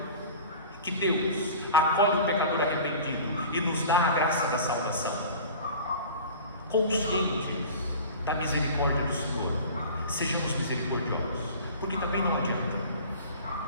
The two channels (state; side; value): inverted; both; correlation -0.40